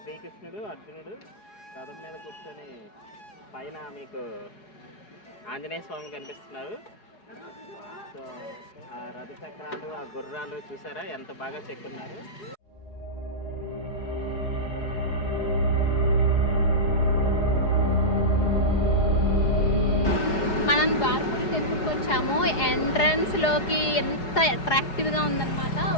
శ్రీకృష్ణుడు అర్జునుడు రథం మీద కూర్చొని పైన మీకు ఆంజనేయ స్వామి కనిపిస్తున్నారు. సో ఆ రథ చక్రాలు, ఆ గుర్రాలు చూసారా ఎంత బాగా చెక్కున్నారు. మనం ద్వారపూడి టెంపుల్కి వచ్చాము. ఎంట్రన్స్లోకి ఎంత అట్రాక్టివ్గా ఉందన్నమాట.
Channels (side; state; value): right; late; 4.8 ms